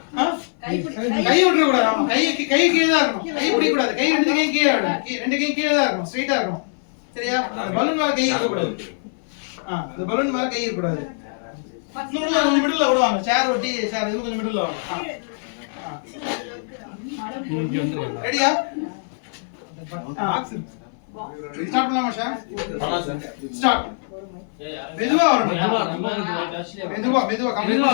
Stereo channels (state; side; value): silent; right; 58 dB below the other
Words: கை விட்டுற கூடாது. ஆமா கை கீழே தான் இருக்கணும். கை பிடிக்க கூடாது. கை ரெண்டு கையும் கீழே இருக்கணும். ரெண்டு கையும் கீழே தான் இருக்கணும். ஸ்ட்ரைட்டா இருக்கணும். சரியா பலூன் மேல கை இருக்க கூடாது. இந்த பலூன் மேல கை இருக்க கூடாது. கொஞ்சம் மிடில்ல விடுவாங்க. சேர் ஒட்டி சேர் இது கொஞ்சம் மிடில்ல வாங்க. ரெடியா ஸ்டார்ட் பண்ணலாமா சார்? ஸ்டார்ட். மெதுவா வரணும். மெதுவா